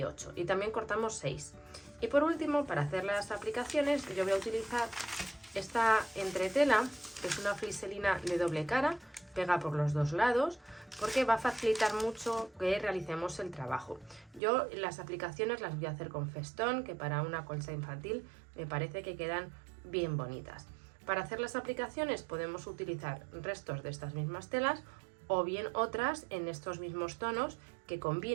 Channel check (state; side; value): drops out; left; at 14.4 s